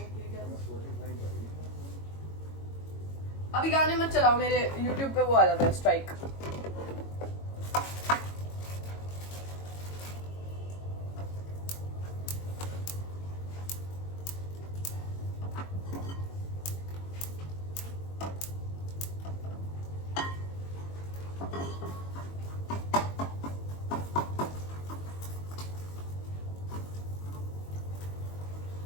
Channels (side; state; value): right; late; 22 ms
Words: Spotify करेंगे। अभी गाने मत चलाओ, मेरे YouTube पे वो आ जाता है स्ट्राइक।